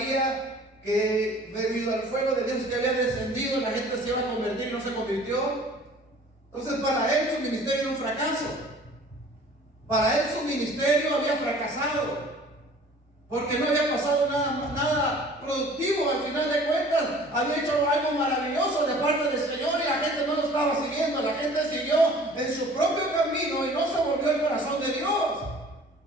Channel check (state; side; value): normal; both; correlation 0.49